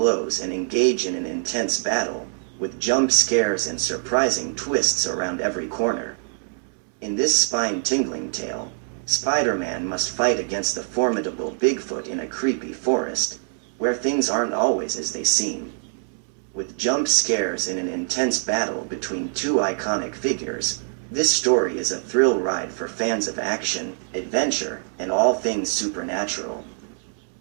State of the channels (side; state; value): left; silent; 62 dB below the other